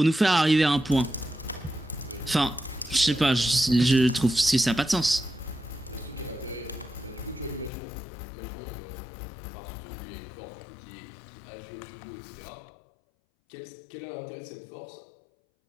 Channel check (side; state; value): right; drops out; at 7.7 s